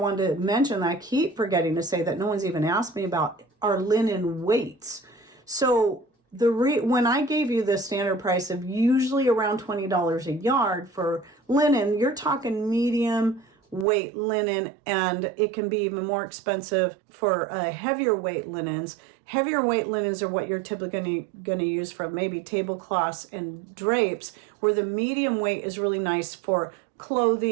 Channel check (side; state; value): left; drops out; at 13.9 s